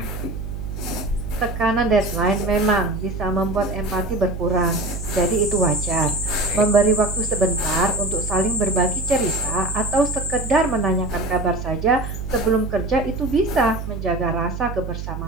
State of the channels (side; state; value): right; noise; hum, 7 dB below the sound